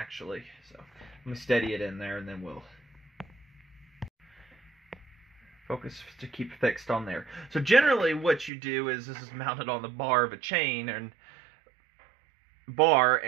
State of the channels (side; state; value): left; drops out; at 8.5 s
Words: So let me steady it in there and then we'll focus to keep fixed on there. So generally what you do is this is mounted on the bar of a chain and